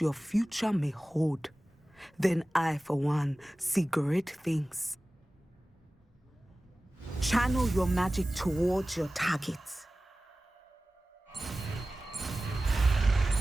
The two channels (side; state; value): both; normal; correlation 0.97